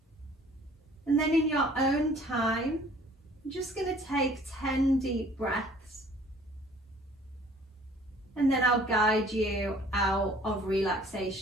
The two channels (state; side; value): normal; both; correlation 0.54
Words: And then in your own time, I'm just going to take 10 deep breaths. And then I'll guide you out of